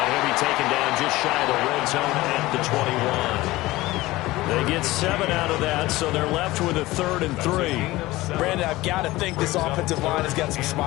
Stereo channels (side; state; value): right; quieter; 18.7 dB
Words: he'll be taken down just shy of the red zone at the 21. They get 7 out of that, so they're left with a 3rd and 3. Brandon, I've got to think this offensive line has got some